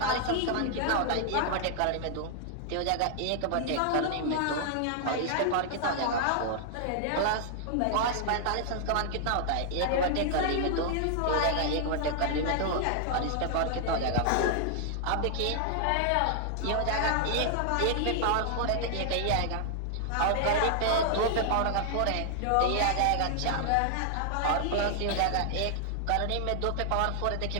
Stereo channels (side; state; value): both; different; correlation -0.01